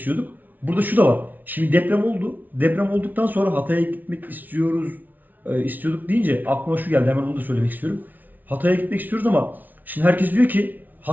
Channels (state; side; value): late; left; 0.082 ms